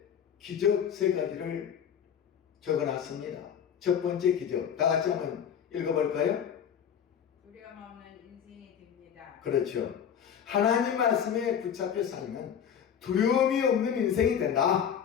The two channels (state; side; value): quieter; right; 8.3 dB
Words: 기적 3가지를 적어놨습니다. 첫 번째 기적, 다 같이 한번 읽어볼까요? 두려움 없는 인생이 됩니다. 그렇죠. 하나님 말씀에 붙잡혀 살면 두려움이 없는 인생이